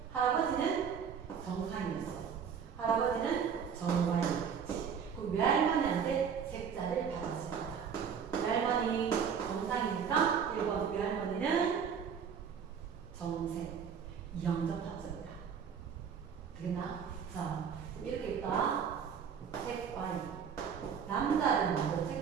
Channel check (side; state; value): left; quieter; 7.1 dB